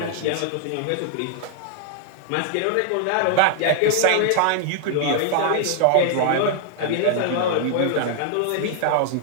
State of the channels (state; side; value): different; both; correlation 0.00